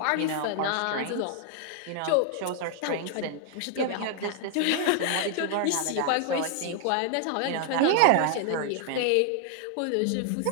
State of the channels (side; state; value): both; different; correlation 0.00